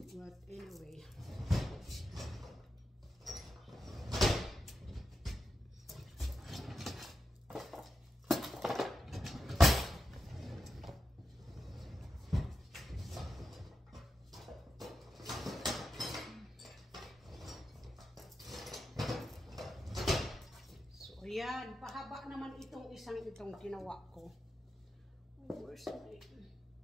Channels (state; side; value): normal; both; correlation 0.89